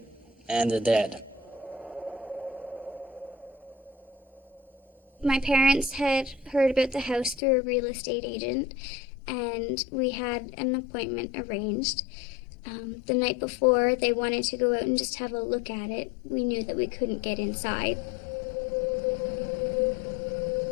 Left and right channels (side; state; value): right; drops out; at 7.4 s